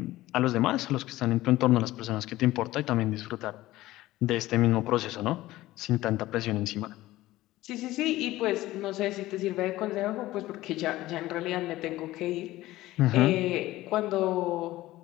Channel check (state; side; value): quieter; right; 16.7 dB